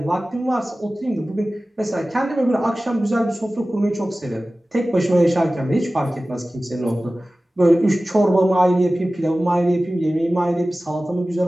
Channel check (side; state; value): both; normal; correlation 0.96